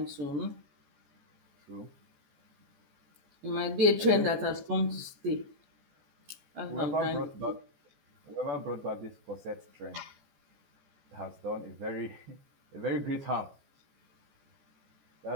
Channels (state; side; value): late; left; 14 ms